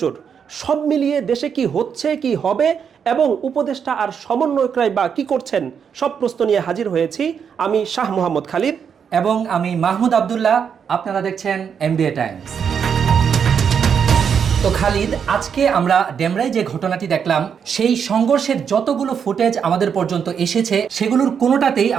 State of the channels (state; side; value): quieter; left; 7.2 dB